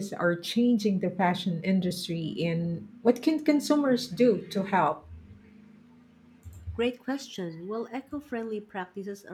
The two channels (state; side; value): identical; both; correlation 1.00